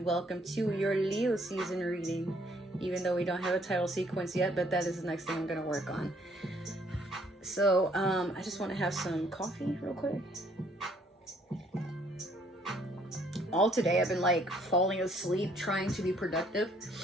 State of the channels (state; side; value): normal; both; correlation 0.64